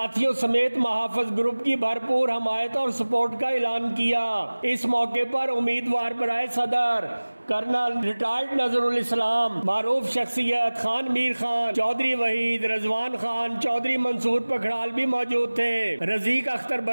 समेत महाफिज ग्रुप की भरपूर हमायत और सपोर्ट का ऐलान किया। इस मौके पर उम्मीदवार बराए सदर कर्नल रिटायर्ड नजरुल इस्लाम, मारूफ शख्सियत खान मीर खान, चौधरी वहीद, रजवान खान, चौधरी मंसूर पखड़ाल भी मौजूद थे। रजीक अख्तर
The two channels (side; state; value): both; inverted; correlation -1.00